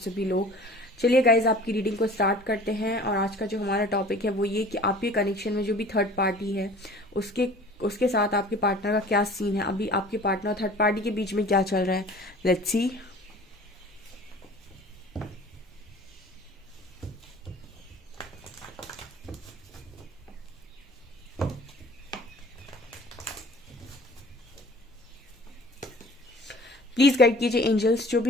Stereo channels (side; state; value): both; normal; correlation 0.46